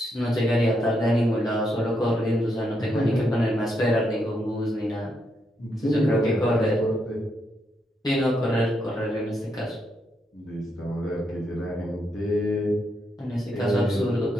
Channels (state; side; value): normal; both; correlation 0.79